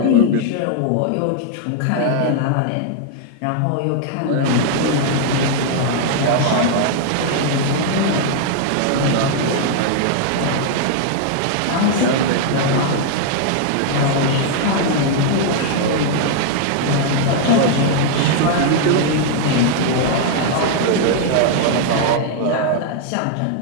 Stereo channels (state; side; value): different; both; correlation -0.01